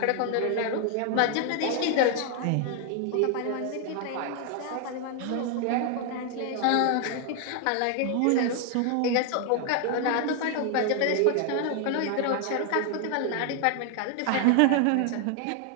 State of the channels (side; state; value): both; different; correlation 0.00